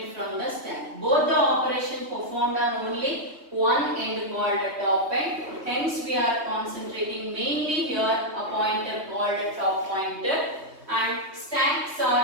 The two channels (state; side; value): late; left; 3.2 ms